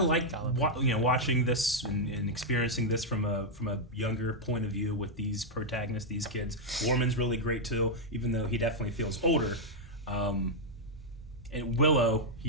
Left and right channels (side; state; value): both; normal; correlation -0.03